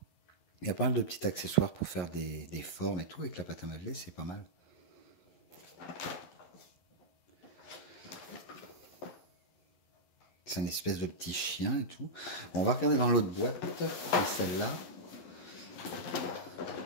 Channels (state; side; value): late; right; 11 ms